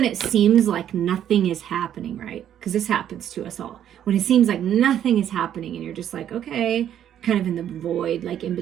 it seems like nothing is happening, right? Because this happens to us all. When it seems like nothing is happening and you're just like, okay, kind of in the void, like in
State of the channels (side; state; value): left; quieter; 10.3 dB